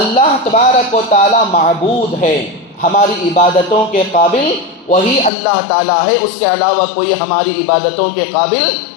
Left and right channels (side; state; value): right; drops out; at 5.3 s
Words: تبارک و تعالیٰ معبود ہے، ہماری عبادتوں کے قابل وہی اللہ تعالیٰ ہے، اس کے علاوہ کوئی ہماری عبادتوں کے قابل